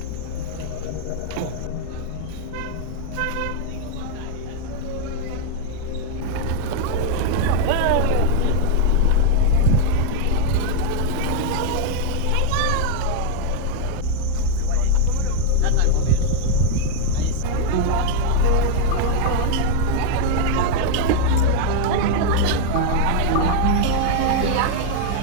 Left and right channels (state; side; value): different; both; correlation 0.00